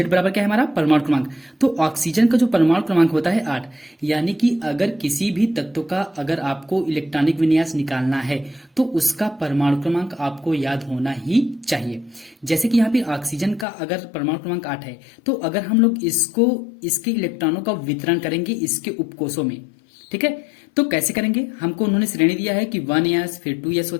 बराबर क्या है हमारा परमाणु क्रमांक। तो ऑक्सीजन का जो परमाणु क्रमांक होता है 8, यानी कि अगर किसी भी तत्व का अगर आपको इलेक्ट्रॉनिक विन्यास निकालना है तो उसका परमाणु क्रमांक आपको याद होना ही चाहिए। जैसे कि यहाँ पे ऑक्सीजन का अगर परमाणु क्रमांक 8 है तो अगर हम लोग इसको इसके इलेक्ट्रॉनों का वितरण करेंगे इसके उपकोषों में, ठीक है, तो कैसे करेंगे। हमको उन्होंने श्रेणी दिया है कि 1s फिर 2s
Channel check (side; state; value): right; drops out; at 13.7 s